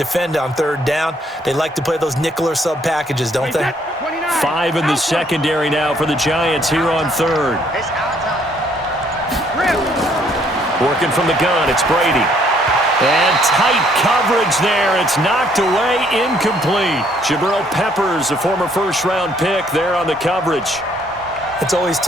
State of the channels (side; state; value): both; normal; correlation 0.66